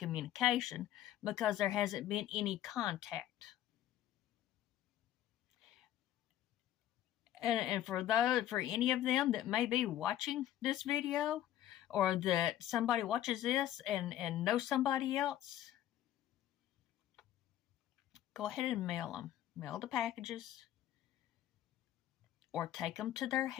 because there hasn't been any contact. And for any of them that may be watching this video, or that somebody watches this and knows somebody else, go ahead and mail the packages, or take them to their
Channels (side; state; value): right; quieter; 12.3 dB